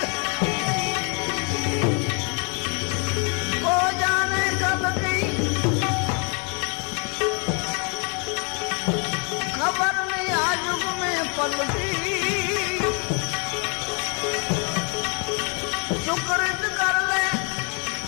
हो जाने कल की खबर नहीं आज युग में पलटी सुकृत कर ले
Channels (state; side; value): quieter; right; 36.0 dB